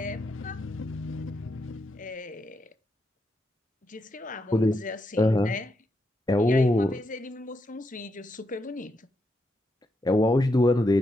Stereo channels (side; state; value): both; normal; correlation 0.82